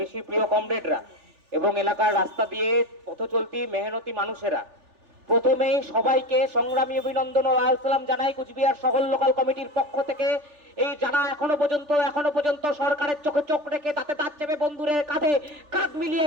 বেশি প্রিয় কমরেডরা এবং এলাকার রাস্তা দিয়ে পথ চলতি মেহনতি মানুষেরা, প্রথমেই সবাইকে সংগ্রামী অভিনন্দন ও লাল সালাম জানাই কুচবিহার শহর লোকাল কমিটির পক্ষ থেকে। এই যারা এখনো পর্যন্ত সরকারের চোখে চোখ রেখে তাতে তার চেপে বন্ধুরের কাঁধে কাঁধ মিলিয়ে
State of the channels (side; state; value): left; late; 3.4 ms